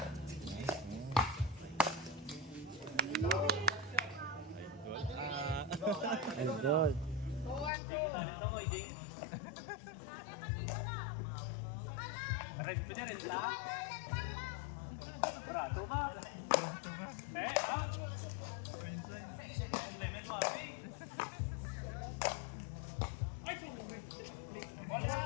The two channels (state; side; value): drops out; right; at 7.7 s